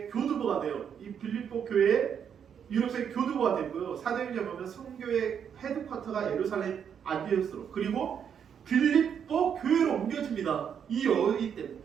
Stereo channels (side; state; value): left; quieter; 7.9 dB